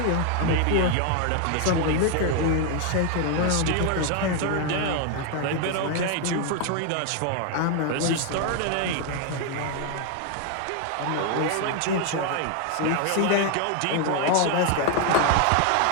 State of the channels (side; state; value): both; different; correlation 0.01